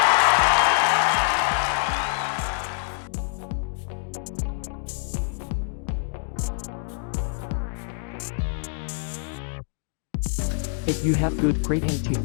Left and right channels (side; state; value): right; silent; digital silence